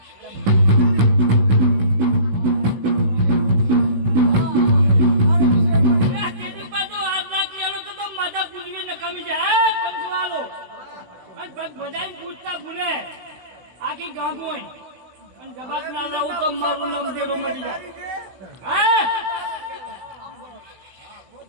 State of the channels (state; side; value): late; left; 16 ms